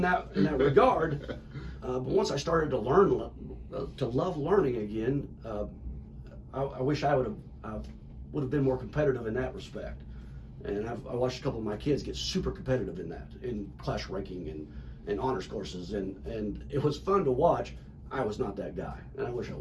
regard. But once I started to learn, to love learning again, I wish I would have been more competitive in that respect. And I watched a couple of my kids get super competitive in class ranking and honors courses, and it was fun to watch. I was not that guy, and I wish I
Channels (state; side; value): identical; both; correlation 1.00